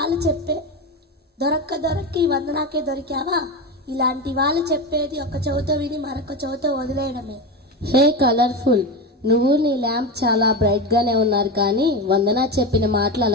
చెప్పే దొరక్క ఈ వందనాకే దొరికావా? ఇలాంటి వాళ్ళు చెప్పేది ఒక చెవితో విని మరొక చెవితో వదిలేయడమే. హే కలర్ఫుల్, నువ్వు నీ ల్యాంప్ చాలా బ్రైట్ గానే ఉన్నారు, కానీ వందన చెప్పిన మాటలు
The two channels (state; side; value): normal; both; correlation 0.20